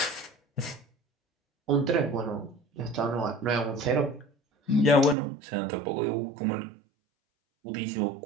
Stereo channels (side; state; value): left; drops out; at 5.2 s